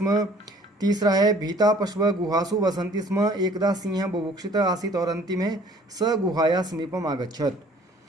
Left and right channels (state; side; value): normal; both; correlation 0.54